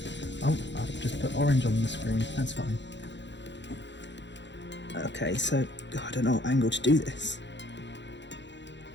Oh, I'll just put orange on the screen, that's fine. Okay, so I don't know what angle to do this.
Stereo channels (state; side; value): late; right; 0.52 ms